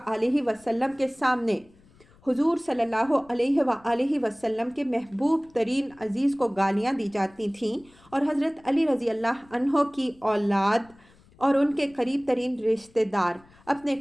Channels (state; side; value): noise; left; rumble, 28 dB below the sound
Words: وسلم کے سامنے حضور صلی اللہ علیہ وآلہ وسلم کے محبوب ترین عزیز کو گالیاں دی جاتی تھیں، اور حضرت علی رضی اللہ عنہ کی اولاد اور ان کے قریب ترین رشتہ دار اپنے